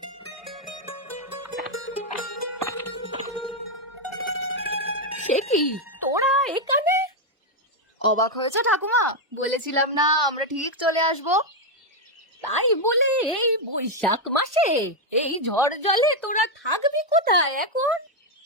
সে কি, তোরা এখানে? অবাক হয়েছে ঠাকুমা? বলেছিলাম না আমরা ঠিক চলে আসবো। তাই বলে এই বৈশাখ মাসে এই ঝড় জলে তোরা থাকবি কোথায় এখন?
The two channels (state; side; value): normal; both; correlation 0.02